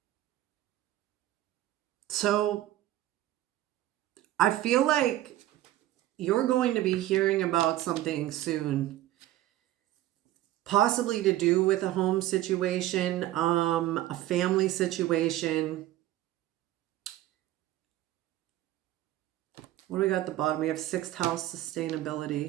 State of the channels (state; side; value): quieter; left; 14.6 dB